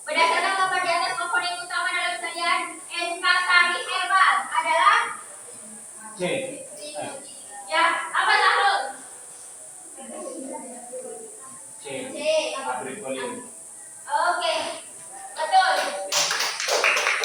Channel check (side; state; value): both; identical; correlation 1.00